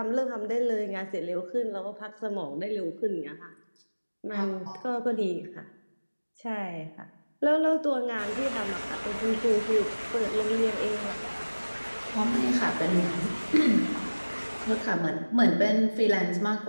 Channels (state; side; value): inverted; both; correlation -1.00